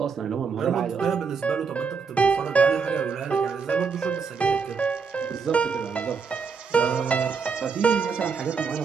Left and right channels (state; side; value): quieter; left; 5.5 dB